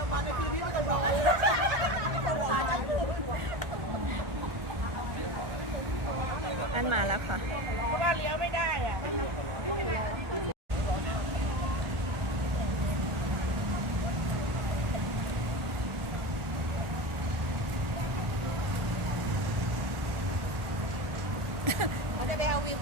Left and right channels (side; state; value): left; late; 1.4 ms